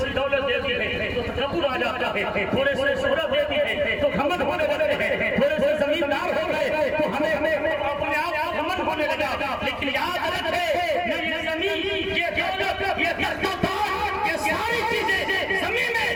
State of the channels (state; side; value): identical; both; correlation 1.00